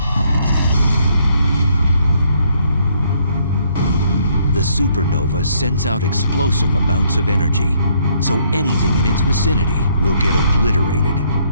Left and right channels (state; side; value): inverted; both; correlation -0.68